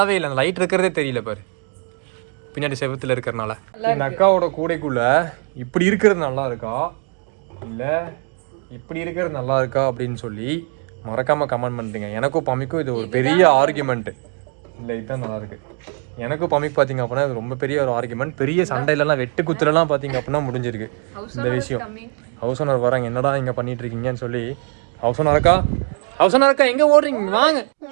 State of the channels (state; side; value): quieter; left; 39.4 dB